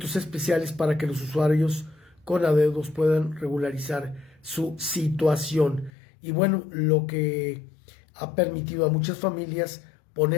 especiales para que los usuarios con adeudos puedan regularizar su situación. Y bueno, lo que ha permitido a muchas familias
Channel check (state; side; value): drops out; right; at 5.9 s